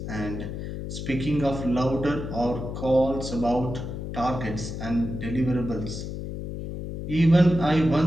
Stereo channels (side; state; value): left; noise; hum, 6 dB below the sound